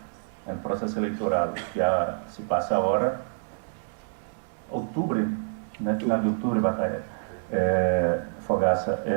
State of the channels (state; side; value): silent; left; digital silence